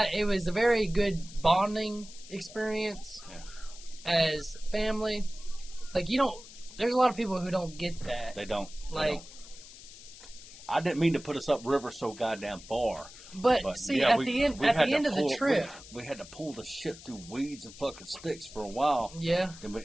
it was a very good bonding experience as family. Like, there's a lot of people who don't get that. They don't. I didn't mean to put us upriver so goddamn far. But see, at the end of the trip, we had to pull the shit through weeds and fucking sticks for a while. Yeah. Then we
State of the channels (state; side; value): noise; left; hiss, 17 dB below the sound